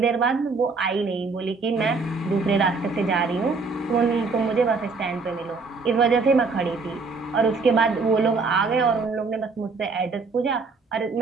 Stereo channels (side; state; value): left; quieter; 4.3 dB